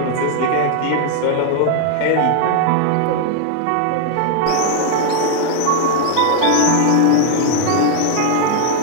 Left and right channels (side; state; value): both; different; correlation 0.00